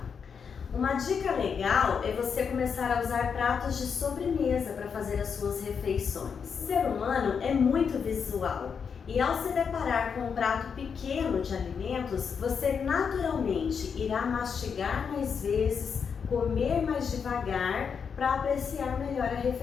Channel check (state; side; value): quieter; right; 6.4 dB